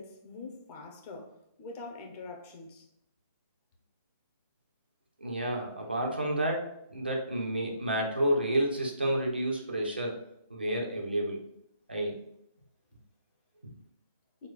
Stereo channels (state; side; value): inverted; both; correlation -0.71